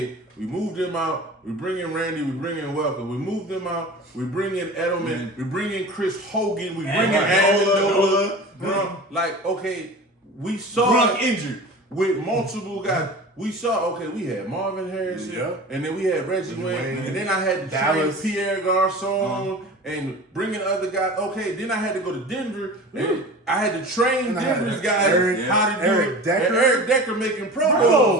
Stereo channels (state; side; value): normal; both; correlation 0.36